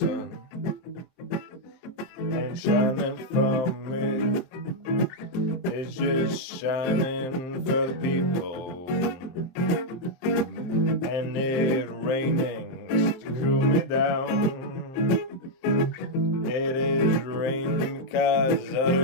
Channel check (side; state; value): right; late; 23 ms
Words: ain't shining for me. It's just shining for the people. And it raining to cool me down. It is raining because